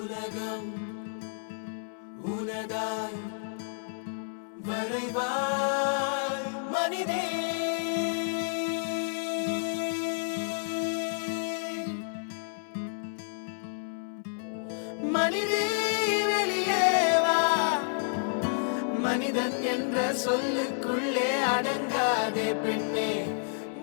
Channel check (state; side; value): silent; right; 58 dB below the other